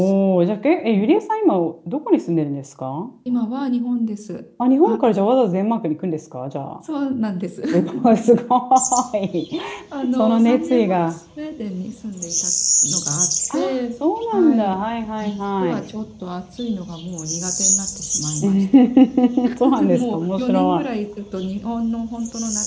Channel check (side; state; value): both; identical; correlation 1.00